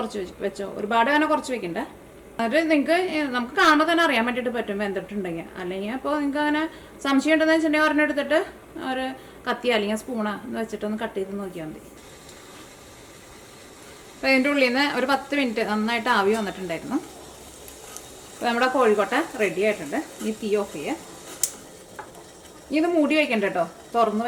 വെച്ചോ, ഒരുപാട് അങ്ങനെ കുറച്ച് വെക്കണ്ട. എന്നിട്ട് നമുക്ക് കാണുമ്പോൾ തന്നെ അറിയാൻ വേണ്ടിയിട്ട് പറ്റും വെന്തിട്ടുണ്ടെങ്കിൽ. അല്ലെങ്കിൽ അപ്പോൾ നിങ്ങൾക്ക് അങ്ങനെ സംശയം ഉണ്ടെന്ന് വെച്ചിട്ടുണ്ടെങ്കിൽ ഒരെണ്ണം എടുത്തിട്ട് ഒരു കത്തി അല്ലെങ്കിൽ സ്പൂണോ എന്ന് വെച്ചിട്ടൊന്ന് കട്ട് ചെയ്ത് നോക്കിയാൽ മതി. അപ്പോൾ ഇതിൻ്റെ ഉള്ളിൽ നിന്ന് ഒരു 10 മിനിറ്റ് നന്നായിട്ട് ആവി വന്നിട്ടുണ്ടായിരുന്നു. അപ്പോൾ നമ്മുടെ കോഴിക്കോട്ട റെഡി ആയിട്ടുണ്ട്. ഈ തീ ഓഫ് ചെയ്യുക. ഇത് മൂടി വയ്ക്കണ്ട കേട്ടോ, തുറന്ന്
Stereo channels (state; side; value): identical; both; correlation 1.00